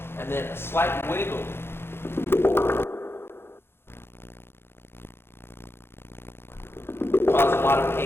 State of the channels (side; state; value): right; late; 0.11 ms